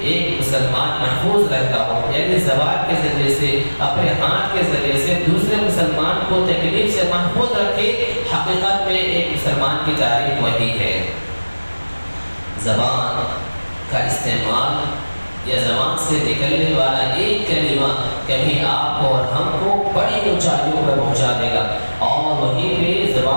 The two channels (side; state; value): both; inverted; correlation -1.00